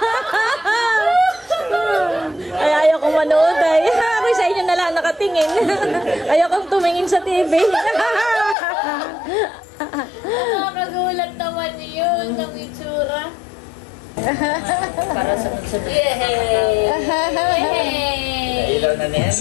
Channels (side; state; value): right; drops out; at 8.6 s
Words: Ay, ayaw kong manood ay. Ako sa inyo na lang nakatingin. Ayaw kong tumingin sa TV. Nakakagulat naman yun ng itsura. Para sa sunod. Yay! Ilaw na ni